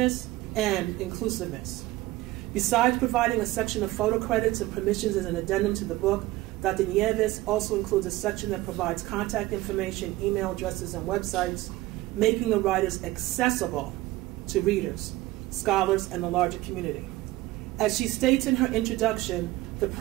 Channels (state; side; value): quieter; left; 18.0 dB